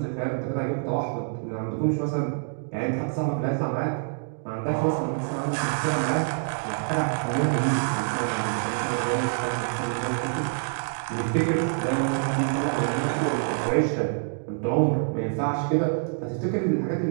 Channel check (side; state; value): left; silent; digital silence